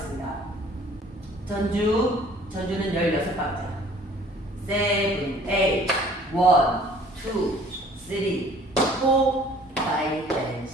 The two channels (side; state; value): both; normal; correlation 0.53